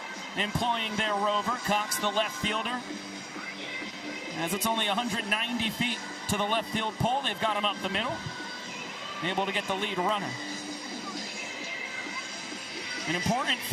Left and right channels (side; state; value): both; identical; correlation 1.00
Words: employing their rover. Cox, the left fielder. As it's only 190 feet to the left field pole, they've got him up the middle. Able to get the lead runner. An important